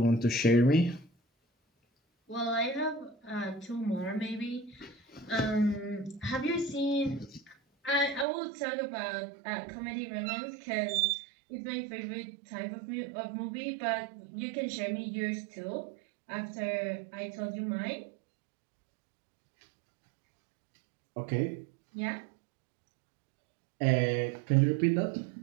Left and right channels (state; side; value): drops out; left; at 8.2 s